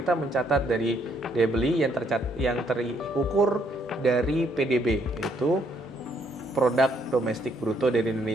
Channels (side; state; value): both; normal; correlation 0.70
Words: mencatat dari daya beli yang terukur dari PDB, yaitu produk domestik bruto dari